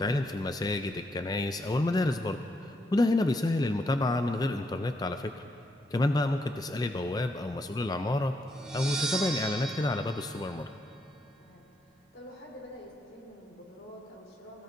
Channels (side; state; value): both; normal; correlation 0.77